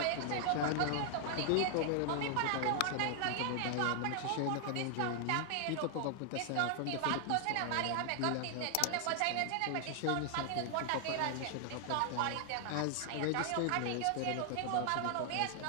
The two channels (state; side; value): different; both; correlation 0.00